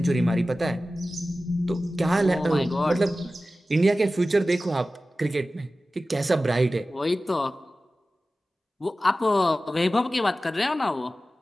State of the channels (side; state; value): both; normal; correlation 0.95